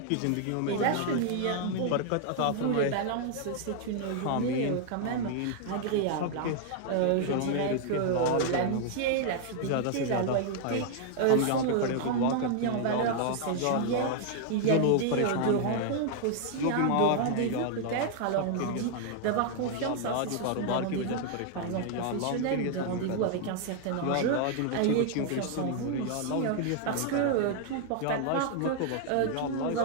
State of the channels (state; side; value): different; both; correlation 0.00